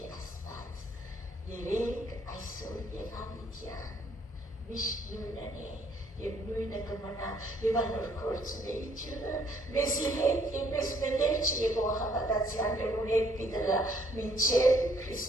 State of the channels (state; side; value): normal; both; correlation 0.65